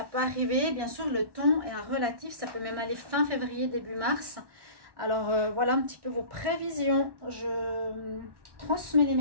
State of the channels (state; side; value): late; left; 1.1 ms